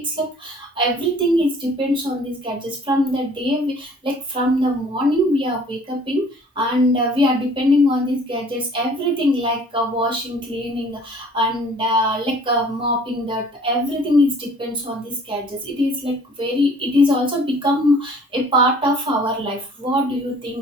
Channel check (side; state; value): both; normal; correlation 0.53